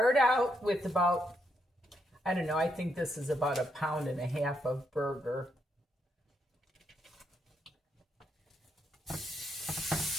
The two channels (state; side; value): normal; both; correlation 0.78